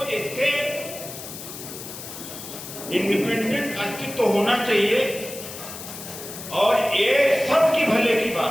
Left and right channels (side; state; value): left; noise; hiss, 11 dB below the sound